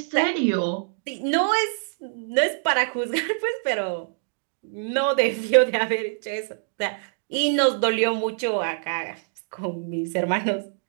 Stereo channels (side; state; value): left; silent; digital silence